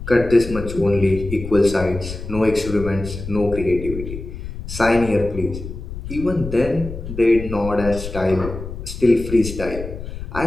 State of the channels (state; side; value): noise; left; rumble, 9 dB below the sound